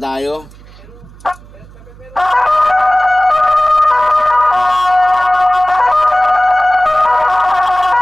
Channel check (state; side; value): noise; right; hum, 22 dB below the sound